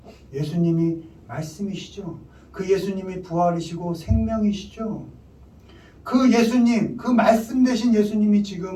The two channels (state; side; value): identical; both; correlation 1.00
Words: 예수님이 말씀이시죠. 그 예수님이 부활이시고 생명이시죠. 그 예수님, 그 말씀 되신 예수님이